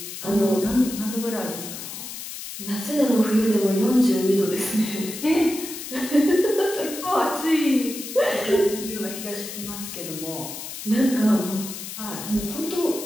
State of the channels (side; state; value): left; noise; hiss, 9 dB below the sound